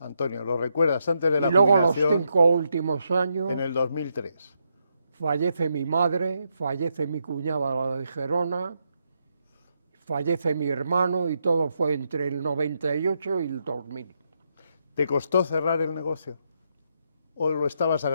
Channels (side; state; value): both; inverted; correlation -0.80